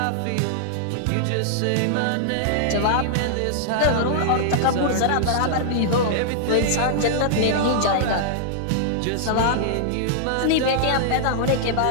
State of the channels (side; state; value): both; different; correlation -0.01